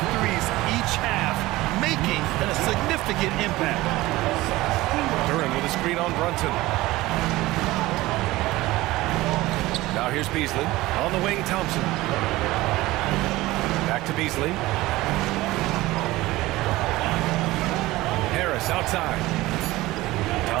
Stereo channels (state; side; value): quieter; left; 18.5 dB